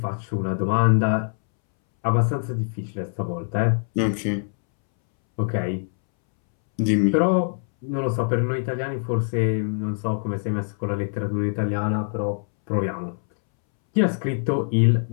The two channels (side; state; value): right; silent; 63 dB below the other